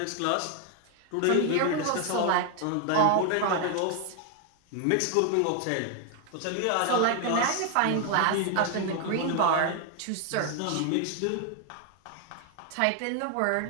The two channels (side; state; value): both; different; correlation 0.00